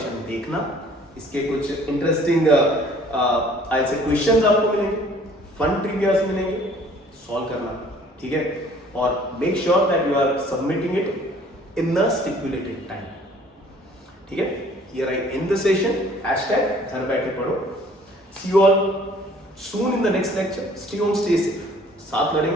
देखना। इसके कुछ इंटरेस्टिंग आई से क्वेश्चंस आपको मिलेंगे, फन ट्रिवियाज मिलेंगे, सॉल्व करना। ठीक है, और make sure that you are submitting it in the stipulated time. ठीक है, here I end the session. Hashtag घर बैठे पढ़ो। See you all soon in the next lecture. Stay home, stay safe. साथ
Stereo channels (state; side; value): normal; both; correlation 0.55